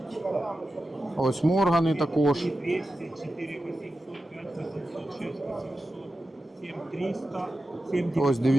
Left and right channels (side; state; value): both; normal; correlation 0.92